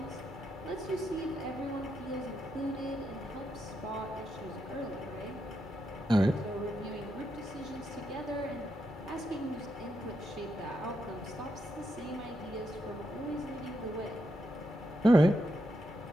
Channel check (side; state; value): both; normal; correlation 0.82